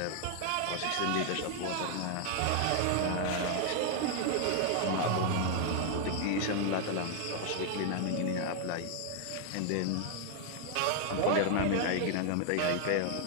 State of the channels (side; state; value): both; different; correlation 0.00